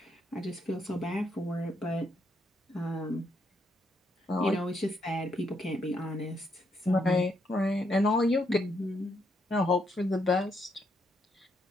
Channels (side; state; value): both; normal; correlation 0.77